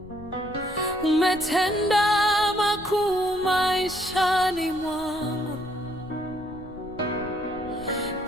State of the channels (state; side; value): noise; left; rumble, 19 dB below the sound